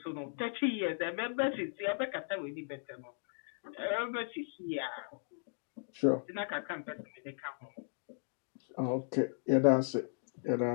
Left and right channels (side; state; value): right; silent; digital silence